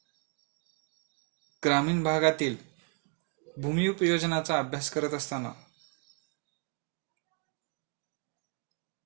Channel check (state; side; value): quieter; left; 39.0 dB